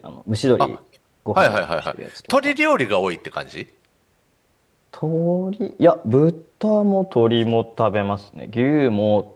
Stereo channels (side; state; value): both; identical; correlation 1.00